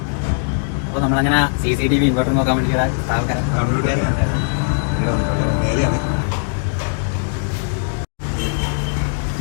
നമ്മളങ്ങനെ CCTV ഇൻവെർട്ടർ നോക്കാൻ വേണ്ടി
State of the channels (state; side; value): silent; right; digital silence